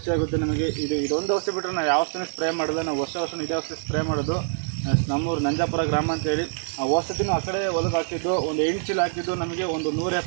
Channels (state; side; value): silent; left; digital silence